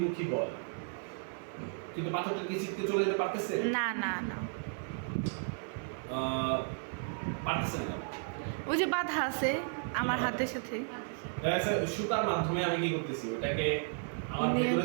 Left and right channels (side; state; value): left; silent; 55 dB below the other